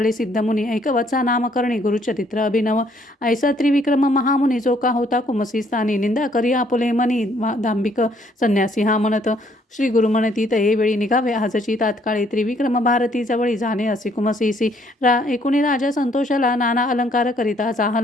सिद्धमुनी ऐकवचा नामकरणी गुरुचरित्र अभिनव ऐसा त्रिविक्रम महामुनी जो का होता कुमसी स्थानी निंदा करी आपुले मनी दांभिक संन्यासी हा म्हणत श्री गुरु म्हणती तये वेळी निघावे आजची तात्काळी त्रिविक्रम भारती जवळी जाणे असे कुमसीसी एकुणी राजा संतोषाला नाना अलंकार करिता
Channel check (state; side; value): normal; both; correlation 0.66